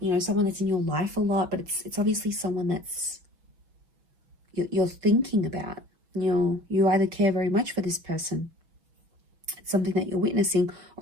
know, someone that's in your life a lot, but it's obviously someone that's you're thinking about. You either care very much for this person, it's something that you're witnessing,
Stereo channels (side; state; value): left; late; 5.8 ms